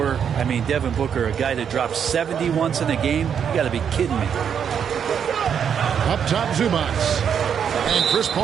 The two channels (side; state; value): left; quieter; 7.8 dB